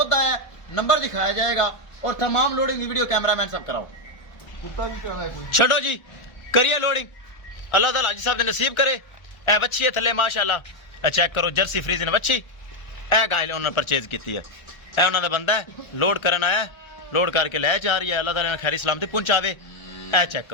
आया, नंबर दिखाया जाएगा और तमाम लोडिंग की वीडियो कैमरामैन सब कराओ। छो जी करिए लोडिंग, अल्लाह ताला हाजी साहब ने नसीब करे। ए बच्ची है थले माशाल्लाह, ए चेक करो जर्सी फ्रीजन बच्ची। ए गाय उन्होंने परचेज की है, ए उन्होंने बंदा है लोड करन आया, लोड करके लै जा रही है। अल्लाह ताला ने खैरी सलामती पहुंचावे। ए चेक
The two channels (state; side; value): late; right; 1.4 ms